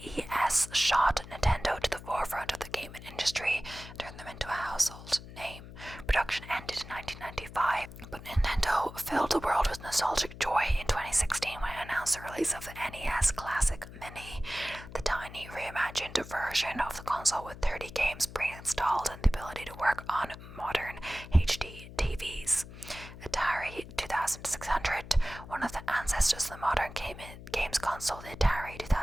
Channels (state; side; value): noise; left; hum, 15 dB below the sound